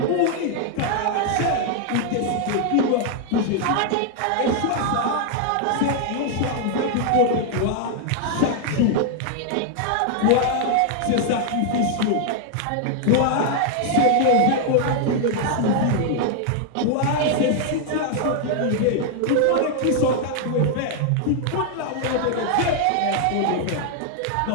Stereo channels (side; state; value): both; different; correlation 0.00